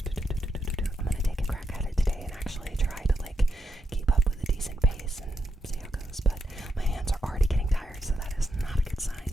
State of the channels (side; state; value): both; normal; correlation 0.82